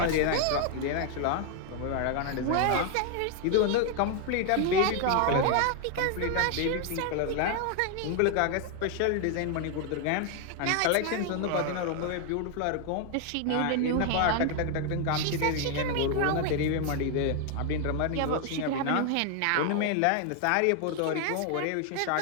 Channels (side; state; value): both; different; correlation 0.00